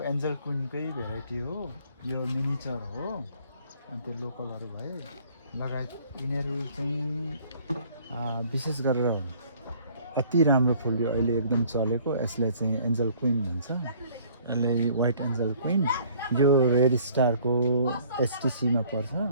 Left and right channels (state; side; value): inverted; both; correlation -0.57